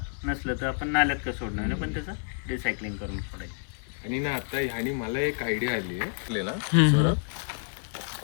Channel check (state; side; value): silent; right; digital silence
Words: नसलं तर आपण नाल्यात का सोडणार नाही पण त्याचं रिसायकलिंग करून सोडायचं. आणि ना आता ह्यानी मला एक आयडिया आली आहे ना